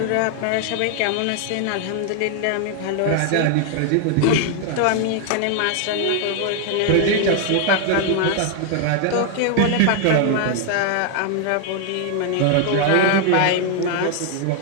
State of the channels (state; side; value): different; both; correlation 0.00